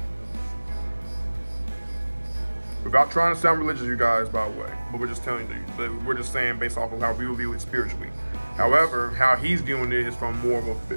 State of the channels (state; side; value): inverted; both; correlation -1.00